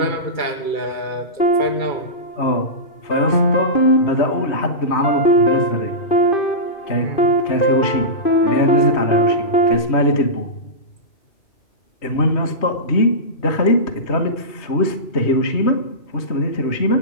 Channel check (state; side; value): late; right; 3.1 ms